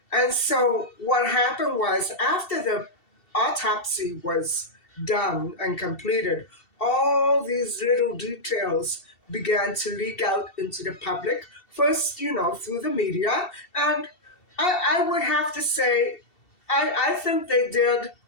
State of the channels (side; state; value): right; late; 2.7 ms